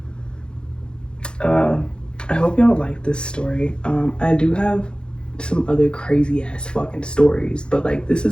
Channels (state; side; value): late; right; 0.051 ms